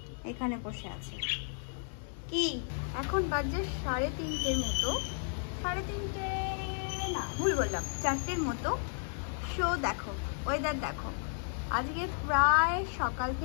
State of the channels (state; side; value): silent; right; digital silence